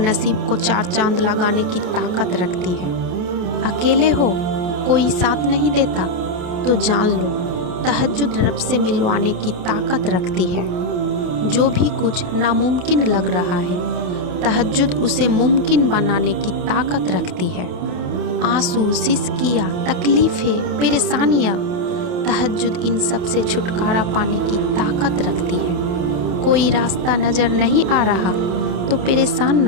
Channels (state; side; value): late; left; 28 ms